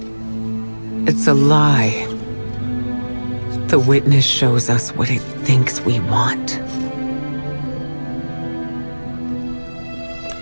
It's a lie. The Witness shows us what it thinks we want.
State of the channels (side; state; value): both; inverted; correlation -1.00